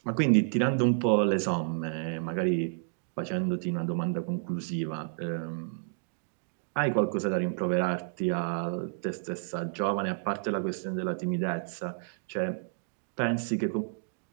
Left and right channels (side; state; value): left; silent; digital silence